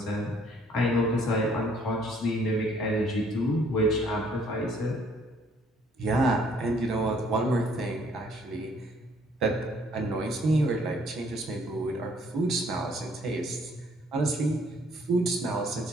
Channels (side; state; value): both; normal; correlation 0.63